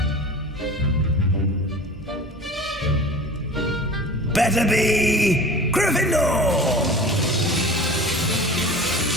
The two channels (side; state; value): both; normal; correlation 0.39